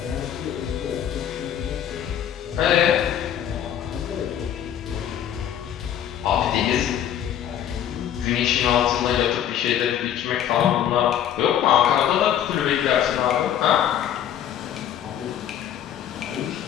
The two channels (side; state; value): right; quieter; 10.2 dB